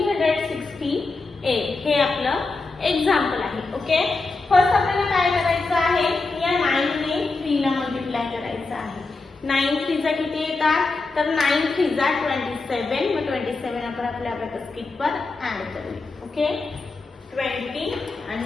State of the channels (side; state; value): right; quieter; 3.7 dB